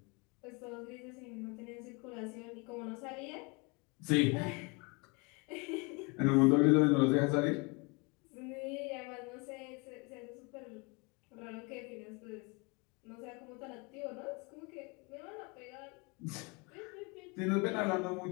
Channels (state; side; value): quieter; right; 29.2 dB